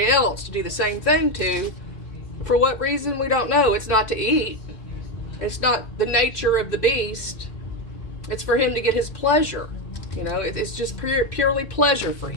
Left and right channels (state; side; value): late; right; 2.6 ms